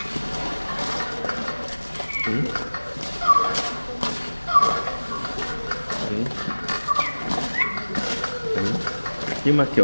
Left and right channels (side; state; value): both; inverted; correlation -1.00